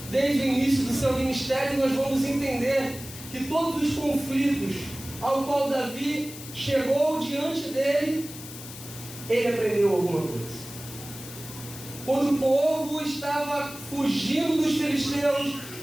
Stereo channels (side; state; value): left; noise; hiss, 13 dB below the sound